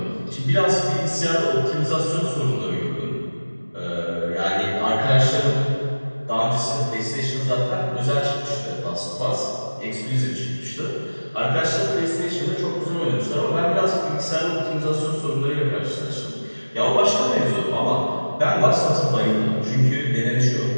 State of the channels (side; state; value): both; inverted; correlation -1.00